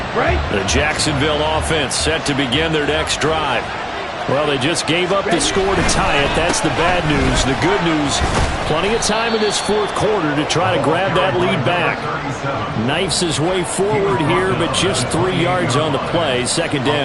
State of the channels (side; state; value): both; identical; correlation 1.00